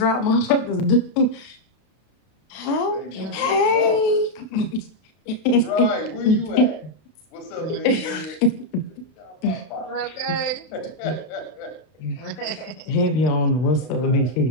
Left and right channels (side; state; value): right; late; 32 ms